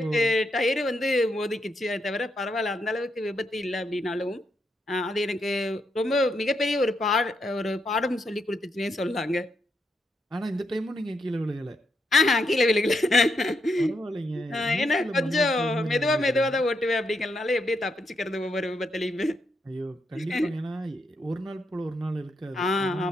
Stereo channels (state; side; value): normal; both; correlation 0.80